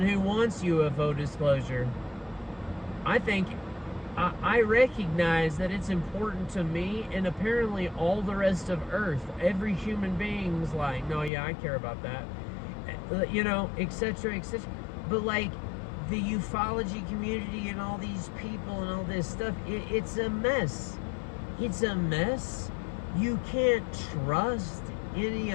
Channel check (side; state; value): right; drops out; at 11.3 s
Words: wants UFO disclosure. I recognize that it's important to me, and apparently all the rest of Earth, every human being's like, no, yeah, I care about that, etc., etc. But like, the ufology community and all these people and all this stuff, it's a mess. It's a mess. You can't trust any